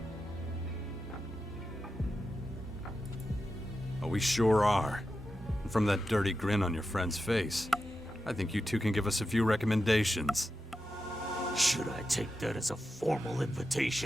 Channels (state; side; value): normal; both; correlation 0.90